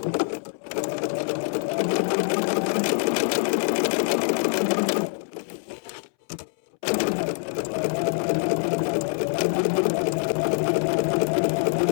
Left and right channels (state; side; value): silent; right; 62 dB below the other